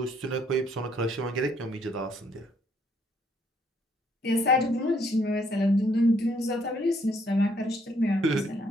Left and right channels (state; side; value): normal; both; correlation 0.68